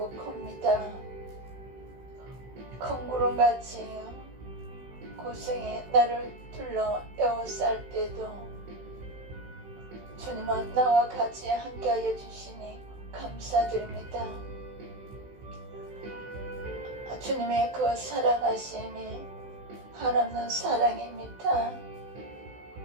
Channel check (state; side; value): late; left; 16 ms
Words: 큽니다. 큰 구름같이 고생이 나를 둘러 에워쌀 때도 주님은 나와 같이 함께하여 주시니 감사드립니다. 주님의 그 사랑하심이 한없는 사랑입니다.